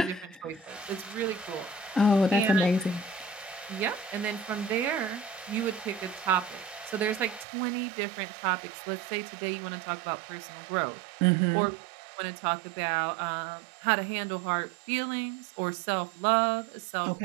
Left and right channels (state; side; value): drops out; left; at 7.5 s